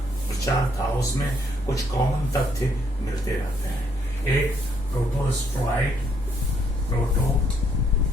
प्रचार था, उसमें कुछ कॉमन तथ्य मिलते रहते हैं। एक प्रोटोस्ट्रॉइड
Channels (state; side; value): normal; both; correlation 0.70